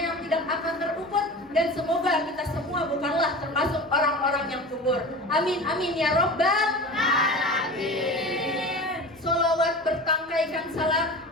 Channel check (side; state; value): both; normal; correlation 0.33